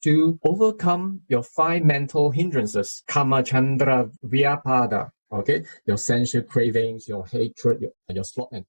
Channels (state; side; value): inverted; both; correlation -1.00